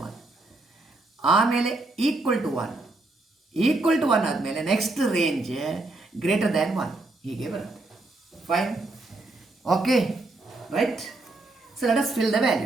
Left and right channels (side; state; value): left; quieter; 3.0 dB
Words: 1. ಆಮೇಲೆ ಈಕ್ವಲ್ ಟು 1 ಆದಮೇಲೆ ನೆಕ್ಸ್ಟ್ ರೇಂಜ್ ಗ್ರೇಟರ್ ದ್ಯಾನ್ 1 ಹೀಗೆ ಬರುತ್ತೆ. Fine, okay, right? So let us fill the